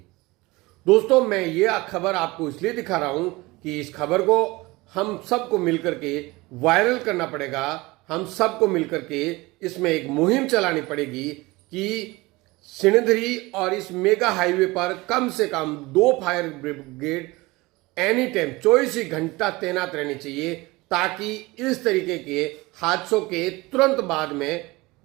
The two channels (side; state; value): left; quieter; 21.9 dB